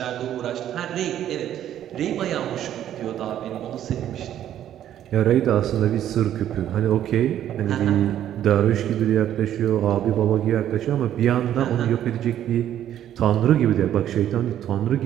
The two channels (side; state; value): left; quieter; 11.1 dB